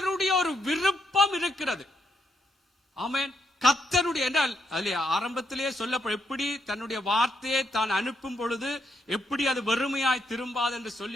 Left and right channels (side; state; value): both; normal; correlation 0.78